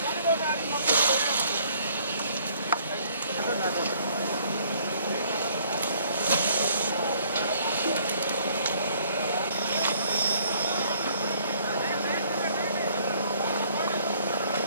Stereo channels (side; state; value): both; inverted; correlation -0.61